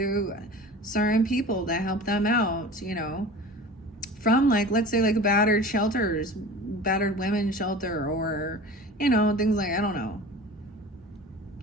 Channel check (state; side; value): normal; both; correlation 0.38